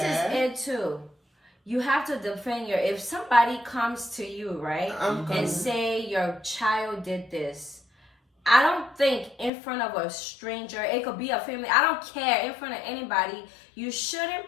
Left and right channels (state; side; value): drops out; right; at 9.5 s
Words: is it too. You have to defend your. If somebody comes to you, right, I'm coming. and say your child did this. I don't think in front of a stranger, it could be a family, I don't care, in front of anybody, you